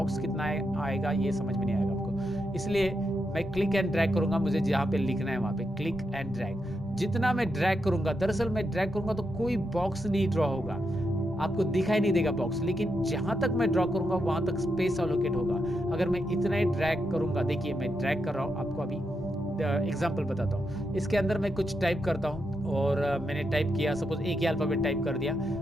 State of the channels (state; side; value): normal; both; correlation 0.84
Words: कितना आएगा ये समझ में नहीं आएगा आपको। इसलिए मैं क्लिक एंड ड्रैग करूंगा, मुझे जहां पे लिखना है वहां पे क्लिक एंड ड्रैग। जितना मैं ड्रैग करूंगा, दरअसल मैं ड्रैग करूंगा तो कोई बॉक्स नहीं ड्रॉ होगा, आपको दिखाई नहीं देगा बॉक्स, लेकिन जहां तक मैं ड्रॉ करूंगा वहां तक स्पेस अलोकेट होगा। अगर मैं इतना ही ड्रैग करूंगा, देखिए मैं ड्रैग कर रहा हूं, आपको अभी एग्जाम्पल बताता हूँ। इसके अंदर मैं कुछ टाइप करता हूँ और मैंने टाइप किया, सपोज एक ही अल्फाबेट टाइप कर दिया,